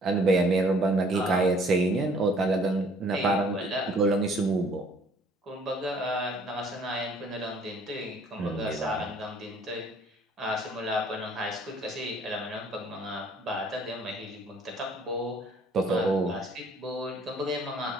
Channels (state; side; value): normal; both; correlation 0.58